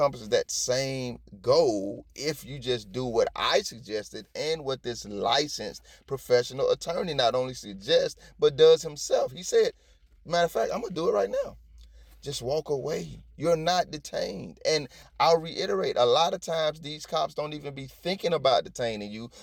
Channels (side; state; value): both; identical; correlation 1.00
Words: that same goal if you just do what I suggested and what this licensed professional attorney not only suggests, but does himself. He said, matter of fact, I'm going to do it right now. Just walk away. You're not detained. And I'll reiterate, a lot of times these cops don't even be thinking about detaining you,